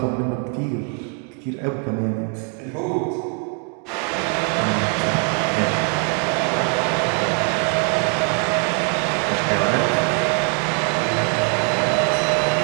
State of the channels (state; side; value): quieter; left; 35.5 dB